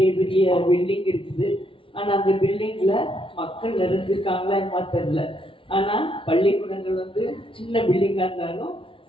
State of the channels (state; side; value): late; right; 0.25 ms